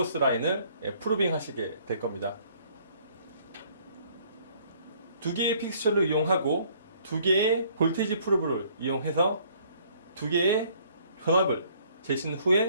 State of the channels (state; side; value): inverted; both; correlation -0.61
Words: 라인을 프로빙 하시게 될 겁니다. 두 개의 픽스처를 이용하고 두 개의 볼테이지 프로브를 이용해서 두 개의 전압을 재신